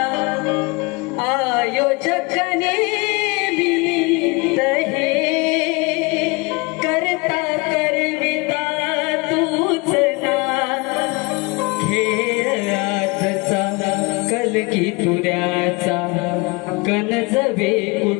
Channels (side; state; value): right; quieter; 27.3 dB